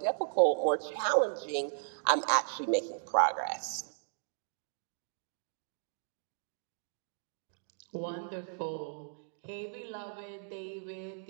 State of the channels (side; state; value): left; silent; digital silence